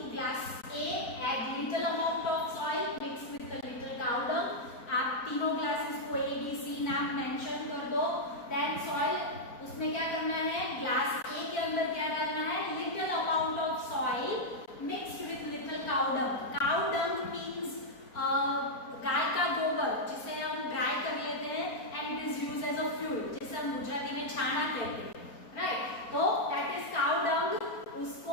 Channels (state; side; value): late; right; 4.3 ms